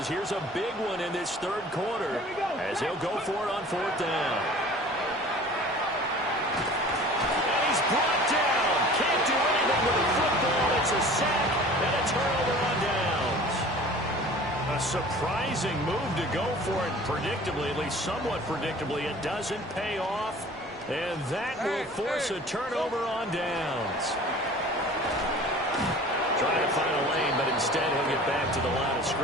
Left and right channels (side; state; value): both; normal; correlation 0.45